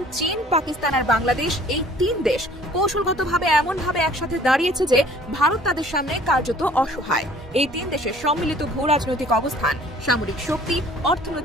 চীন, পাকিস্তান আর বাংলাদেশ, এই 3 দেশ কৌশলগতভাবে এমনভাবে একসাথে দাঁড়িয়েছে যে ভারত তাদের সামনে কার্যত অসহায়। এই 3 দেশের সম্মিলিত ভূ রাজনৈতিক অবস্থান, সামরিক শক্তি,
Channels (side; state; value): both; normal; correlation 0.53